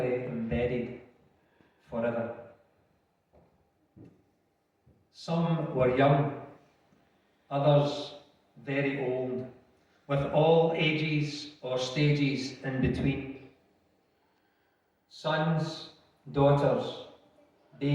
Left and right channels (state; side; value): identical; both; correlation 1.00